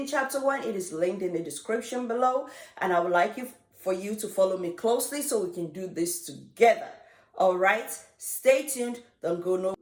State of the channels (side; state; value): both; identical; correlation 1.00